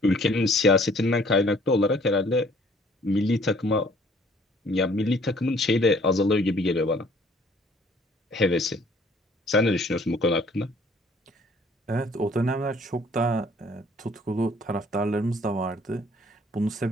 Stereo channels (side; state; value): both; normal; correlation 0.58